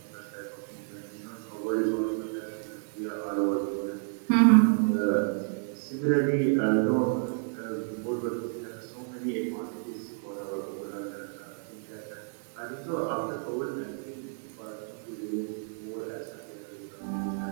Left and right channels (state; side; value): silent; left; 57 dB below the other